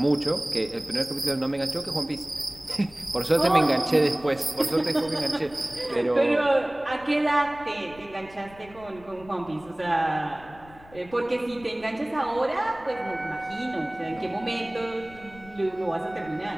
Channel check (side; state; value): left; noise; rumble, 22 dB below the sound